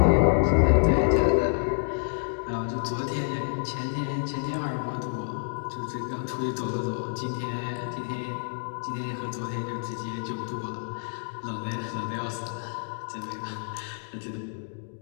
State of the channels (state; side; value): silent; right; digital silence